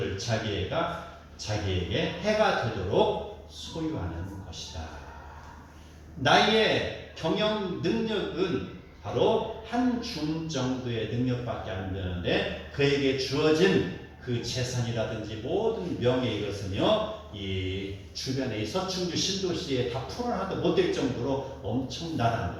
자기에게 해가 되도록 소유하는 것이다. 나의 경영 능력은 바로 한 줌 정도의 능력밖에 안 되는데, 그에게 주어진 그 재산이라든지 모든 명예, 이것은요 이 주변의 서충주 신도시에 다 풀어놔도 못될 정도로 엄청나다는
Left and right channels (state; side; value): identical; both; correlation 1.00